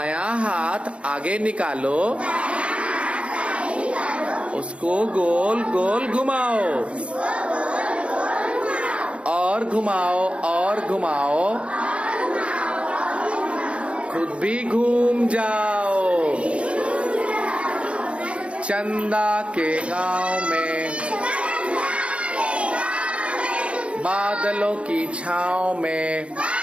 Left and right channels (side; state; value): left; late; 0.060 ms